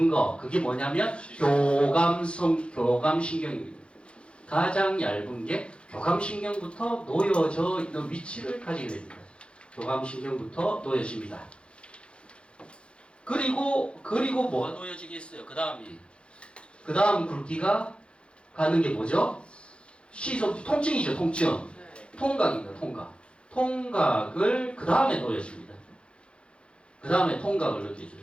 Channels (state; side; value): late; right; 0.057 ms